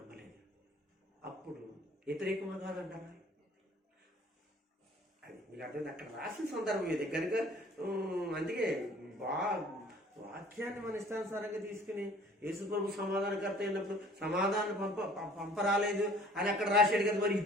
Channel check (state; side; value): normal; both; correlation 0.52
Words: అప్పుడు వ్యతిరేకంగా కాదంటారా? అది మీకు అర్థమైంది. అక్కడ రాసిన సందర్భం ఇది కనుక. అందుకే వాక్యాన్ని మన ఇష్టానుసారంగా తీసుకుని యేసు ప్రభు సమాధానకర్త అయినప్పుడు సమాధానం పంపరాలేదు అని అక్కడ రాశాడు కదా. మరి